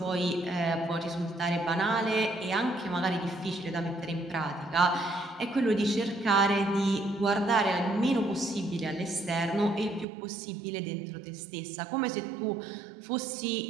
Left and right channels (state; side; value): drops out; left; at 10.1 s